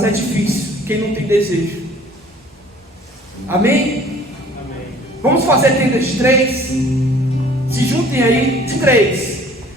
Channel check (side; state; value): both; normal; correlation 0.52